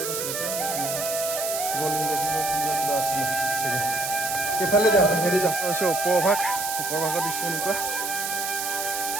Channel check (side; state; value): right; noise; hiss, 3 dB below the sound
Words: আছিলে কিবা আছিলে চাগে এইফালে যাওঁ হেৰি যাওঁ ওপৰ ভাগৰ দৃশ্য এনেকুৱা